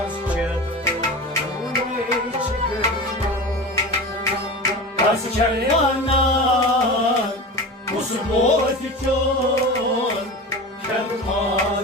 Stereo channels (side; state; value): both; normal; correlation 0.30